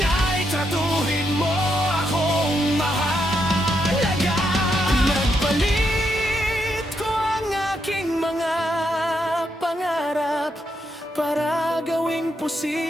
ay tratuhin mo akong mahalaga. Nagpalit ko ang aking mga pangarap para gawing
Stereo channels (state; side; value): normal; both; correlation 0.80